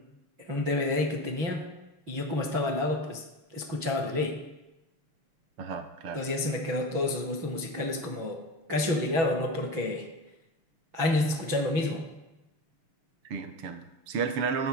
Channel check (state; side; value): late; left; 6.1 ms